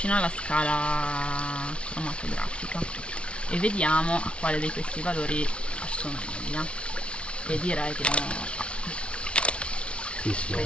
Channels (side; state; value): right; late; 0.059 ms